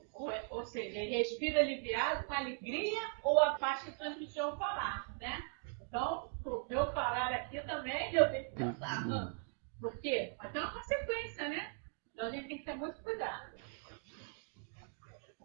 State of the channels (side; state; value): left; silent; 52 dB below the other